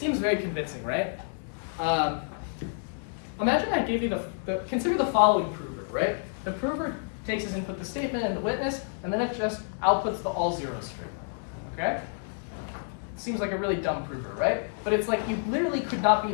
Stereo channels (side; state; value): right; silent; 59 dB below the other